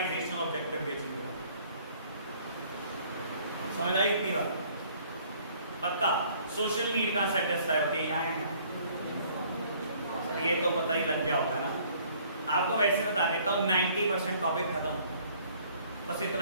ऑब्जेक्टिव भी अचीव हो जाता है। समझ आई इतनी बात? पक्का सोशल नीड का सेटिस्फाई होती है, यहाँ है ये तो पता ही लग गया होगा ना। आपको वैसे बता देता हूँ 90% टॉपिक खत्म, बस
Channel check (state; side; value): inverted; both; correlation -0.58